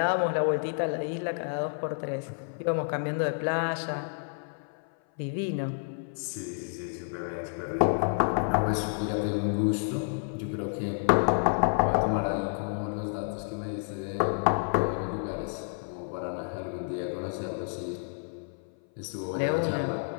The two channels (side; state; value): right; silent; 57 dB below the other